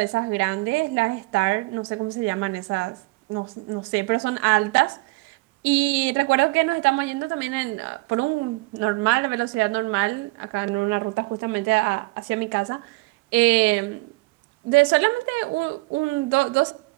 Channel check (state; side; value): quieter; left; 24.0 dB